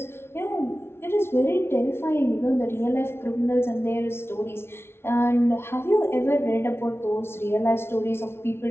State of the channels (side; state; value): right; late; 0.12 ms